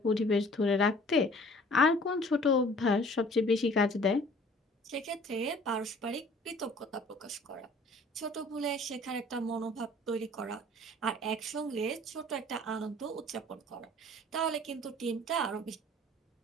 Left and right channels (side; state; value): both; normal; correlation 0.51